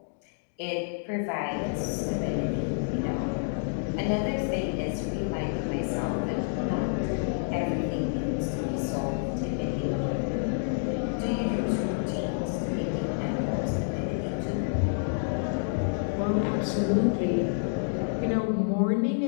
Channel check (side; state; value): right; silent; digital silence